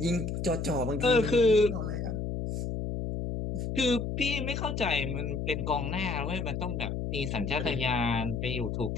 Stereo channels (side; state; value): left; noise; hum, 3 dB below the sound